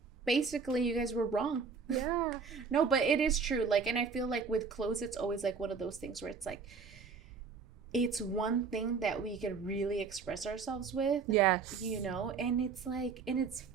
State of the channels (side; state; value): left; quieter; 5.3 dB